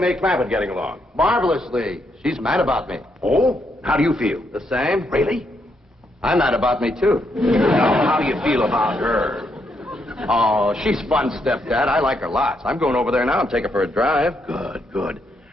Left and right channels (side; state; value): both; normal; correlation 0.77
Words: Clampett getting along? Marvelously. She's mad about me. Oh? How do you feel? The same? Really? I'm mad about me, too. Now, how do you feel about her? Oh, she's fun, Stepdad. I like her lots. I'm going over there now and take her for a drive. Good, good.